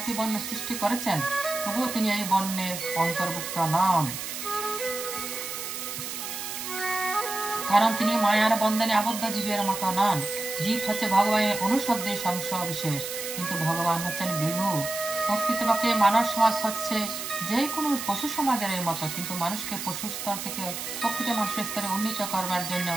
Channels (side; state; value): right; noise; hiss, 6 dB below the sound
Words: বর্ণ সৃষ্টি করেছেন তবুও তিনি এই বর্ণের অন্তর্ভুক্ত নন, কারণ তিনি মায়ার বন্ধনে আবদ্ধ জীবের মতো নন। জীব হচ্ছে ভগবানের অনুশব্দের অংশ বিশেষ, কিন্তু ভগবান হচ্ছেন বিভু। প্রকৃতপক্ষে মানব সমাজ হচ্ছে যে কোনো পশু সমাজের মতো, কিন্তু মানুষকে পশু স্তর থেকে প্রকৃত মানুষের স্তরে উন্নীত করবার জন্য